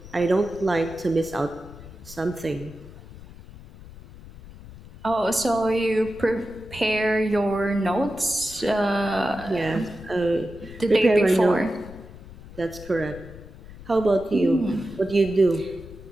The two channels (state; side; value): noise; left; rumble, 17 dB below the sound